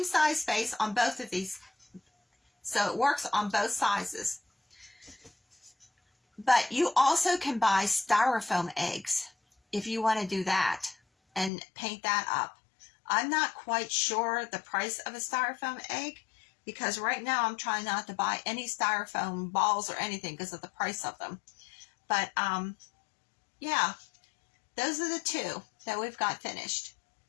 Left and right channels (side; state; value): right; drops out; at 11.5 s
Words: size face on both of these. So it works on both sizes. But you also can buy styrofoam eggs if you want to do that and paint that up. I'm not quite sure the price of a styrofoam egg because right now I'm trying not to buy any styrofoam balls or anything because of the price of them. But yeah, those are the two that we've got finished.